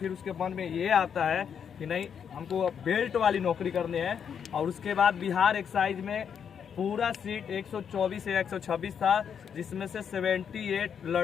उसके मन में ये आता है कि नहीं हमको बेल्ट वाली नौकरी करनी है, और उसके बाद बिहार एक्साइज में पूरा सीट 124 या 126 था, जिसमें से 78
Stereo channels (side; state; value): right; quieter; 7.6 dB